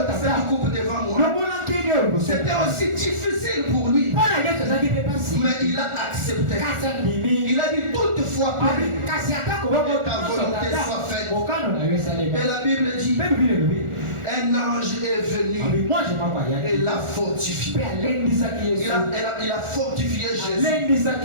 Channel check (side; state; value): left; late; 1.4 ms